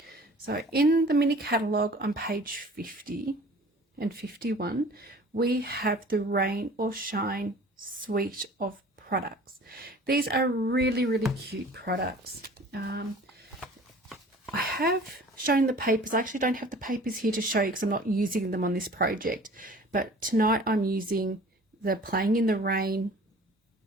So in the mini catalogue on page 50 and 51, we have the Rain or Shine suite of products. These are really cute products. I have shown the papers. I actually don't have the papers here to show you because I'm not using them on this project, but tonight I'm using the Playing in the Rain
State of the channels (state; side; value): normal; both; correlation 0.46